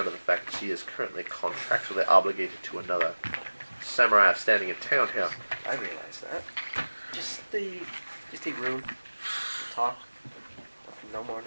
of the fact that she is currently contractually obligated to another samurai standing in town here. I realize that. Just a room, talk, no more,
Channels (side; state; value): both; inverted; correlation -1.00